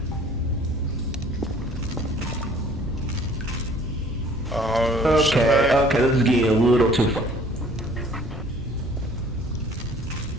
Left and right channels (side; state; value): both; normal; correlation 0.54